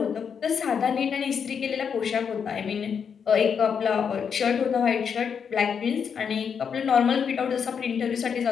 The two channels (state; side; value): quieter; right; 6.9 dB